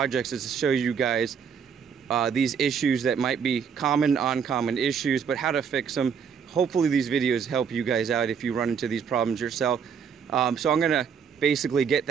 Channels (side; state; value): left; quieter; 6.9 dB